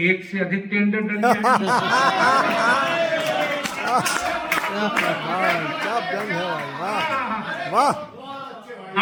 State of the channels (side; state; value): both; identical; correlation 1.00